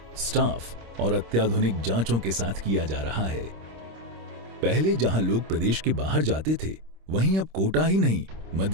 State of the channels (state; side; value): late; left; 26 ms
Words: स्टाफ और अत्याधुनिक जांचों के साथ किया जा रहा है। पहले जहां लोग प्रदेश के बाहर जाते थे, वहीं अब कोटा ही नहीं,